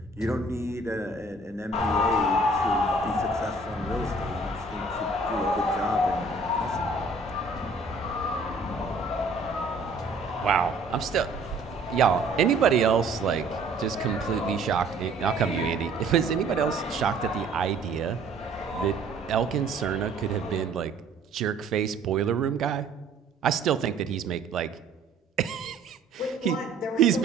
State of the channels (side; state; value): left; quieter; 3.2 dB